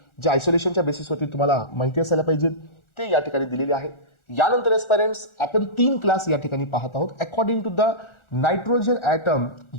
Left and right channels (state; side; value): late; right; 1.4 ms